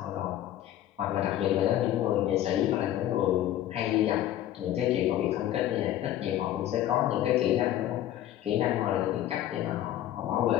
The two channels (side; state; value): right; quieter; 12.5 dB